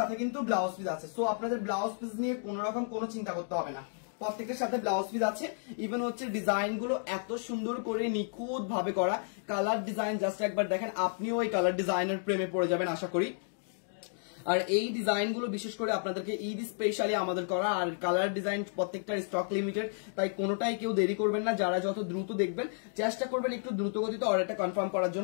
কিন্তু ব্লাউজ পিস আছে, সো আপনাদের ব্লাউজ পিস নিয়ে কোন রকম কোনো চিন্তা করতে হবে না। প্রত্যেকটার সাথে ব্লাউজ পিস আছে, ইভেন হচ্ছে ডিজাইন গুলো এত সুন্দর করে নিখুঁত ভাবে করা। কালার ডিজাইন জাস্ট একবার দেখেন, আপনিও এই কালার ডিজাইনের প্রেমে পড়ে যাবেন আশা করি। আর এই ডিজাইন গুলো বিশেষ করে আপনাদেরকে ঈদ স্পেশালি আমাদের করা, আর কালার ডিজাইন প্রত্যেকটার স্টক লিমিটেড, তাই কোনোটাই কেউ দেরি করবেন না। যারা যত দ্রুত দেখবেন চেষ্টা করবেন একটু দ্রুত গতিতে অর্ডারটা কনফার্ম করার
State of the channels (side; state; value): right; silent; digital silence